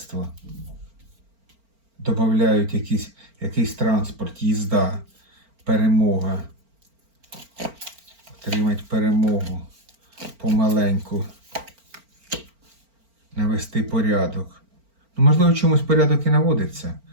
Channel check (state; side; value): late; left; 4.4 ms